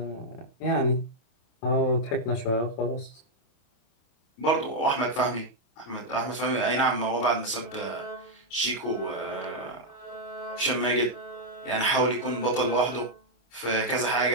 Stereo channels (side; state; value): right; late; 27 ms